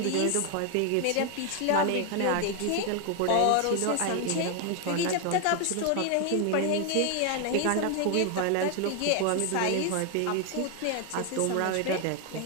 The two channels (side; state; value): both; different; correlation 0.01